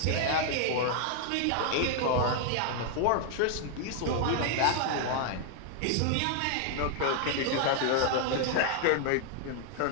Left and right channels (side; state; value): both; different; correlation 0.00